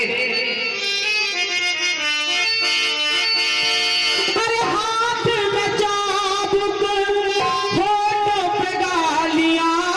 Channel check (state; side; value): identical; both; correlation 1.00